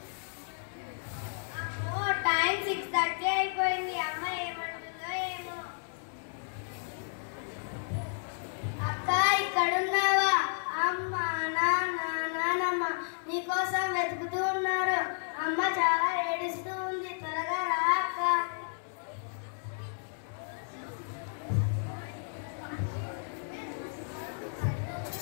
అమ్మో, టైం 6:30 అయిపోయింది. అమ్మ ఏమంటుందో ఏమో. అక్క, ఇక్కడున్నావా? అమ్మ, నాన్న, నానమ్మ నీకోసం వెతుకుతూ ఉన్నారు. అమ్మ చాలా ఏడుస్తూ ఉంది. త్వరగా రా అక్క.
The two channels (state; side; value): silent; right; digital silence